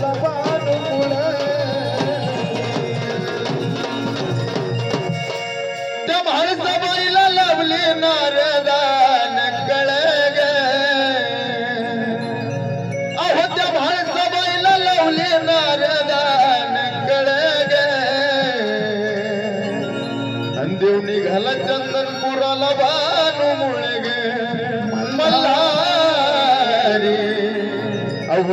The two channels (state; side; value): identical; both; correlation 1.00